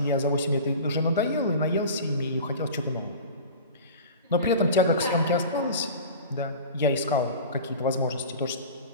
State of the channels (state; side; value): inverted; both; correlation -0.36